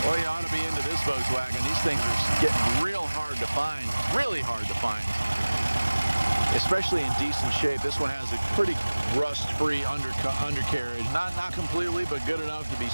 well, you ought to be into this Volkswagen. These things are getting real hard to find, really hard to find, especially in decent shape. This one has a pretty rust-free undercarriage. Not completely, but good enough to be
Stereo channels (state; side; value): inverted; both; correlation -1.00